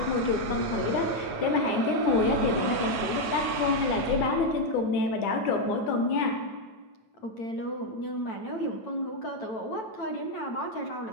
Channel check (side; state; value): right; late; 9.0 ms